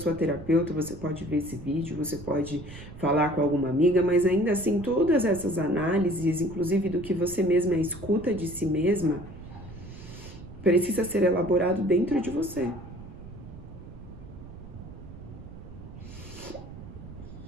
terapeuta, você pode ver esse vídeo, você pode falar com alguma amiga, mas ainda assim todas essas análises, inclusive do que você mesma escuta de si mesma, precisa ser elaborado dentro de você.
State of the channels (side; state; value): right; noise; rumble, 14 dB below the sound